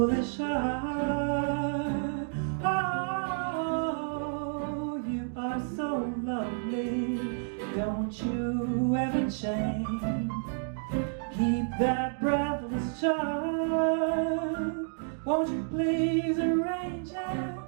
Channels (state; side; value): silent; left; digital silence